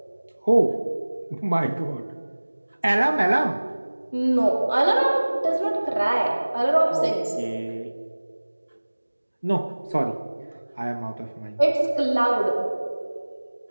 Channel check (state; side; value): inverted; both; correlation -1.00